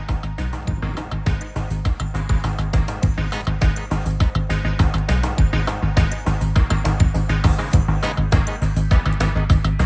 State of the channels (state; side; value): identical; both; correlation 1.00